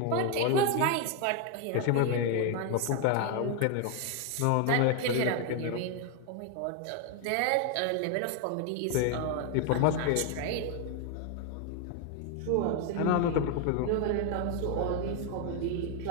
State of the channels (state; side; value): different; both; correlation 0.01